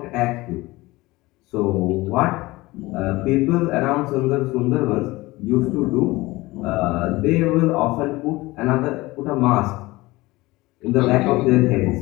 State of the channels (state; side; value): quieter; right; 20.5 dB